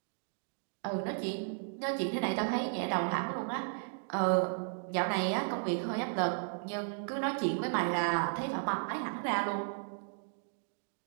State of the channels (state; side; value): silent; left; digital silence